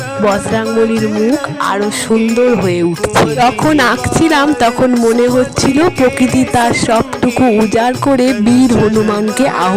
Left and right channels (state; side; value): identical; both; correlation 1.00